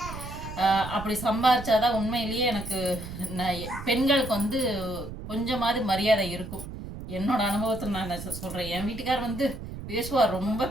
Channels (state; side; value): noise; right; rumble, 10 dB below the sound